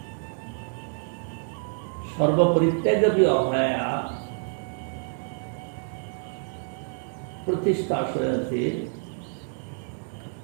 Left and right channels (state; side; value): silent; left; 60 dB below the other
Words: সর্বপরিত্যাগী অভয়া প্রতিষ্ঠা আশয়তে